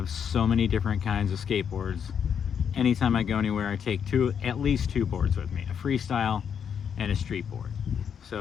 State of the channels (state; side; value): quieter; right; 7.7 dB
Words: so many different kinds of skateboards. Anytime I go anywhere, I take at least two boards with me, a freestyle and a street board.